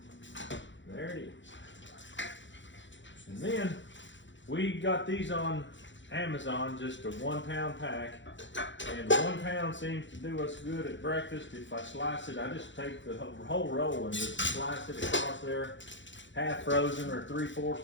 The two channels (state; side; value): late; right; 0.54 ms